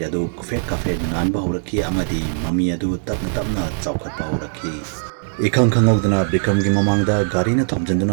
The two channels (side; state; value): left; silent; digital silence